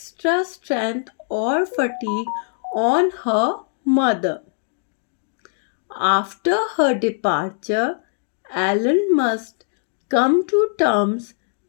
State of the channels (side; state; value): right; silent; 62 dB below the other